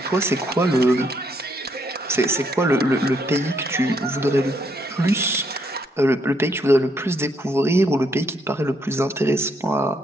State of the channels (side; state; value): both; normal; correlation 0.73